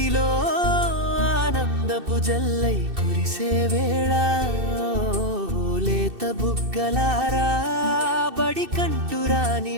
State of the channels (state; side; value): late; left; 2.6 ms